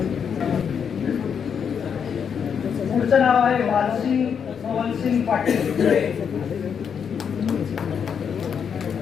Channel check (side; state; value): right; quieter; 7.2 dB